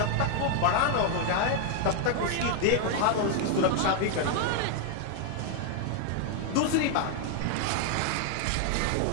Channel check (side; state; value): both; different; correlation 0.00